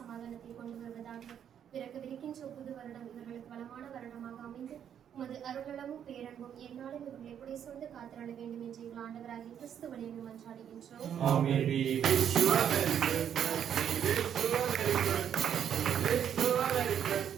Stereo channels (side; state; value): left; quieter; 9.0 dB